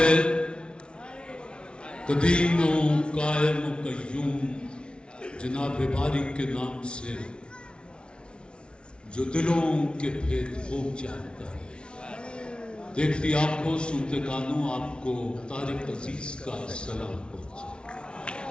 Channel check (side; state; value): right; late; 0.057 ms